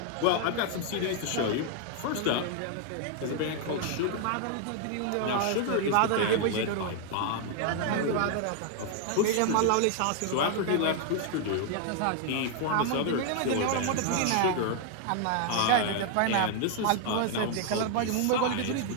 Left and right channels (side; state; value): both; different; correlation 0.00